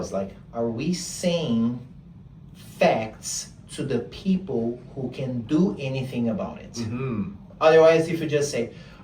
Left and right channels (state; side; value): identical; both; correlation 1.00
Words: like, are we saying facts to the people who can do anything about it? Mm-hmm. Otherwise, if you just say,